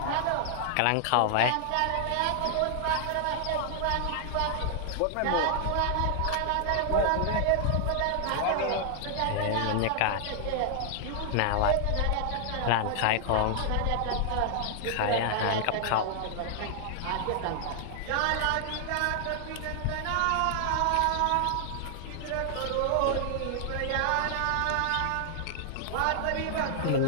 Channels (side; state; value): both; different; correlation 0.00